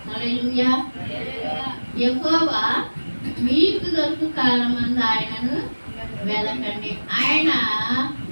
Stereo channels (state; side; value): inverted; both; correlation -1.00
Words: హల్లెలూయా. యెహోవా మీకు దొరుకు కాలమందు ఆయనను వెదకండి. ఆయన